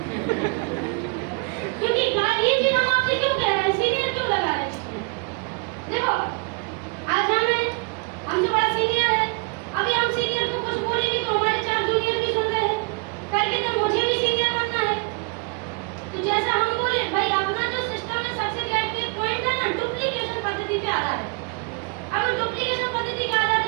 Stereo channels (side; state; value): left; quieter; 32.8 dB